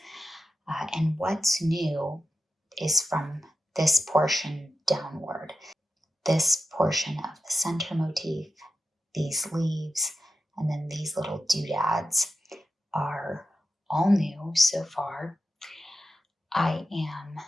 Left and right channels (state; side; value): normal; both; correlation 0.90